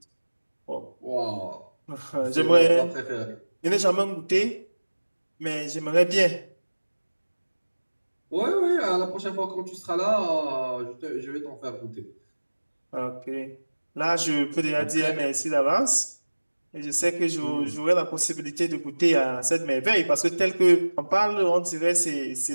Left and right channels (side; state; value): both; inverted; correlation -1.00